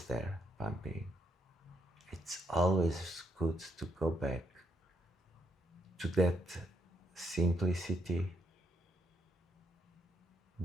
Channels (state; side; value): normal; both; correlation 0.75